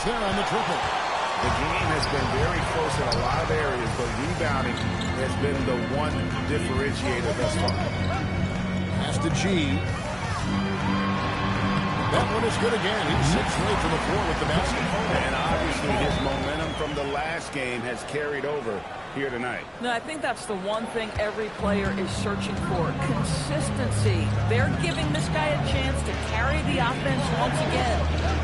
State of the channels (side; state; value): both; identical; correlation 1.00